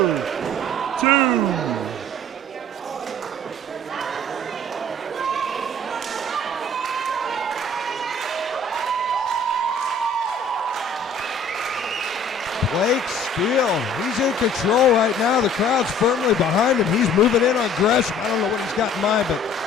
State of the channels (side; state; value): both; normal; correlation 0.52